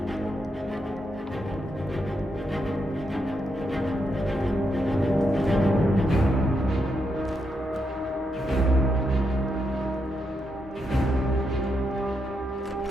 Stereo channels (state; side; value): normal; both; correlation 0.82